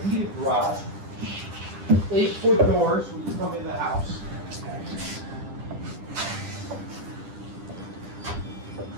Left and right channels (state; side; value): late; left; 10 ms